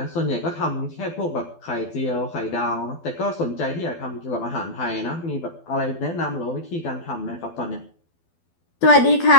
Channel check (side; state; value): right; late; 12 ms